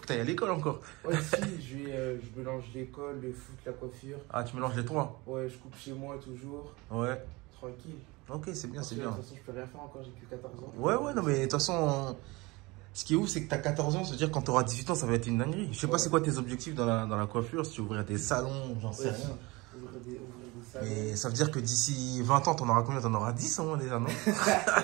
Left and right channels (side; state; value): left; quieter; 23.6 dB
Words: que tu ailles à l'école encore. Ouais, si, je mélange l'école, le foot, la coiffure. Ah, tu mélanges les trois? Ouais, je coupe chez moi toujours. Ouais. Tranquille. Ok, c'est bien, Parce c'est que, bien. de toute façon, je peux rien faire encore, j'ai que 14 ans. Ouais, non, mais de toute façon, ce qui est ouf, c'est que tu as 14 ans, c'est-à-dire quand tu auras 18 ans, ça va être une dinguerie. Je sais pas c'est quoi tes objectifs dans la coiffure, si tu ouvrir des salons, j'en sais rien. Ouvrir des salons. Mais ça veut dire que d'ici 20 ans, t'en auras combien? T'en auras 10 au moins déjà, non?